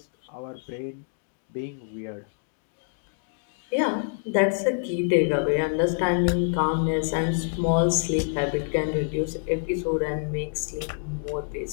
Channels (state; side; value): silent; right; digital silence